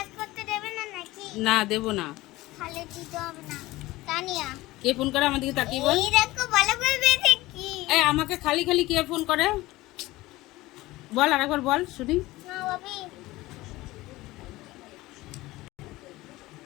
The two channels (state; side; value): quieter; right; 18.8 dB